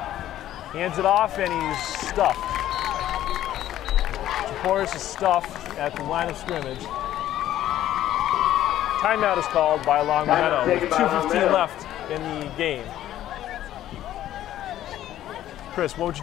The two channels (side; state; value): right; quieter; 12.7 dB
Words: Hands it off, and he's stuffed. Chaporis is stuffed at the line of scrimmage. Timeout is called by Longmeadow with 2:15 left in the game. Chris, what would you